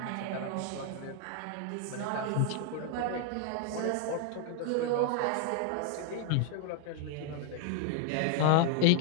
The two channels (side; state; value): both; different; correlation 0.00